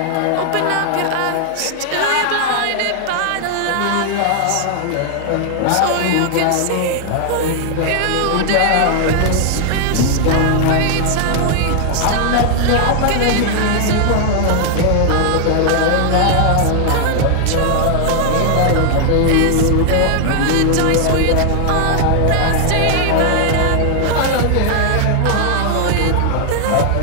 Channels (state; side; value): different; both; correlation 0.00